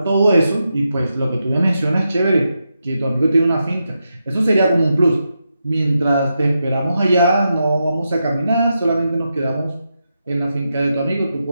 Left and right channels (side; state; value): both; inverted; correlation -0.86